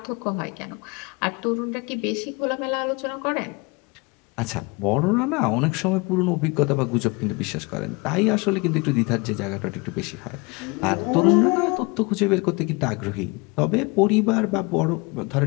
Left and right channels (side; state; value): right; quieter; 27.3 dB